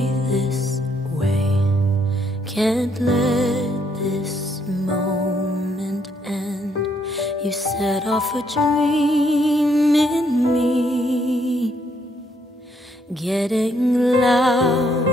this way. Can't let this moment end. You set off a dream in me, getting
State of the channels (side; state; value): both; normal; correlation 0.72